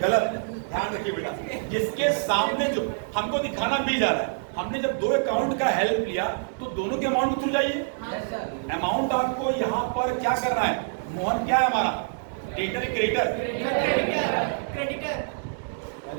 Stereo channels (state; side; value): silent; left; digital silence